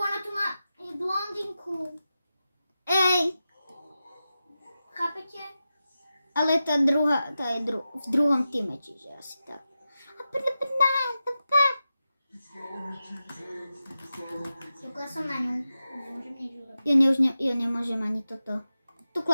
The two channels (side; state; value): both; inverted; correlation -0.92